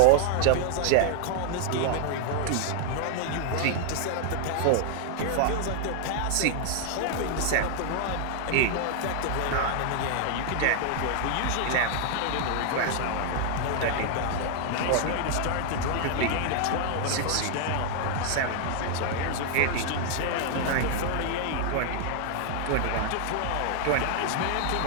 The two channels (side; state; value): both; different; correlation 0.00